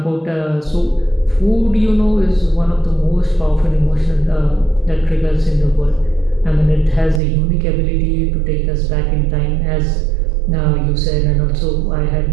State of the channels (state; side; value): drops out; left; at 7.2 s